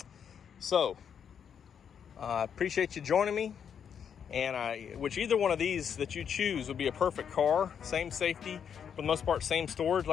So I appreciate you joining me, and which either one of these that you choose would be a perfect car. Same safety, for the most part, same storage.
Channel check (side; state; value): right; quieter; 7.8 dB